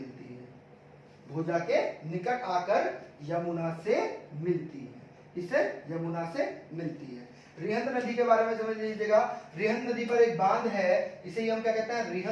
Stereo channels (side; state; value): both; identical; correlation 1.00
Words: है, भोजा के निकट आकर यमुना से मिलती है, इसे यमुना से मिलती है। रिहंद नदी के बारे में समझ लीजिएगा, रिहंद नदी पर एक बांध है, इसे हम क्या कहते हैं,